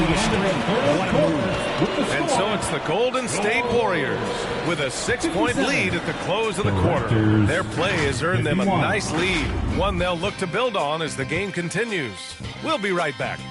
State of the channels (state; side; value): identical; both; correlation 1.00